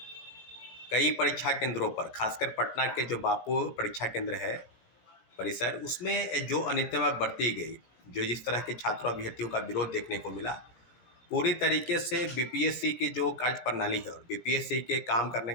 कई परीक्षा केंद्रों पर, खासकर पटना के जो बापू परीक्षा केंद्र है परिसर, उसमें जो अनियमितता बरती गई, जो जिस तरह के छात्रों अभ्यर्थियों का विरोध देखने को मिला, पूरी तरीके से बीपीएससी की जो कार्य प्रणाली है और बीपीएससी के काम करने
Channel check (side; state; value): right; late; 18 ms